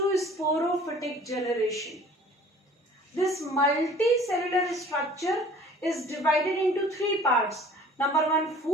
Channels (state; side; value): normal; both; correlation 0.49